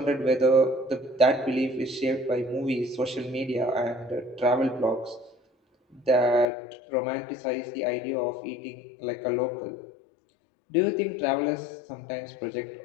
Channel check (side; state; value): right; drops out; at 6.5 s